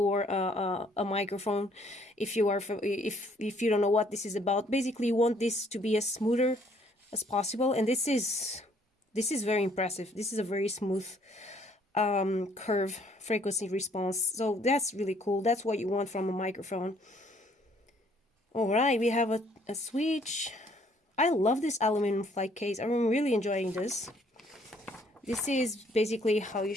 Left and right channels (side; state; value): both; normal; correlation 0.63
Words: a microphone. If you are, if you don't know what this is about, basically you want this to be as smoother as possible, and this is very impressive. This is a very smooth curve frequency response. So that's really cool. That's what you want from a microphone. All right, we have a switch. I love this aluminum flight case. I'm really enjoying this. This is basically how you